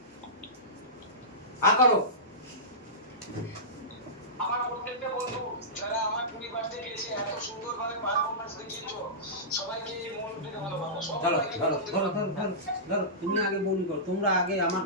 করো আমার প্রত্যেকটা বন্ধু যারা আমার 20 বার্থডে গিয়েছে এত সুন্দরভাবে পারফরম্যান্স দেখিয়েছো সবাইকে মন থেকে ভালোবাসা সবাইকে ধরো তুমি আগে বলি করো তোমরা আগে আমার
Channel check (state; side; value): normal; both; correlation -0.18